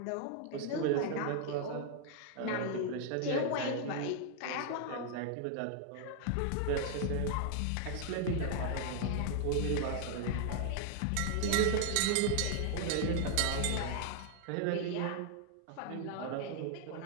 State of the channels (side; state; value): both; different; correlation 0.00